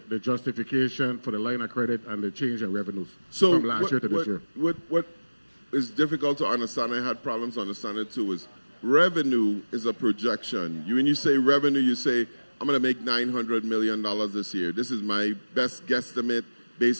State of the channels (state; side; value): inverted; both; correlation -1.00